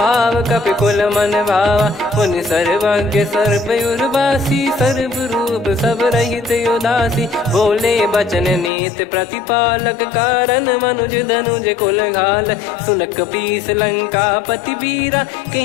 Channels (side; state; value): right; drops out; at 8.7 s